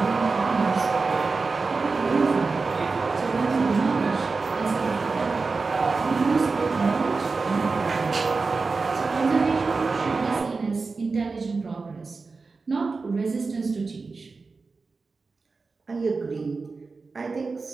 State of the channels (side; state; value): left; quieter; 4.2 dB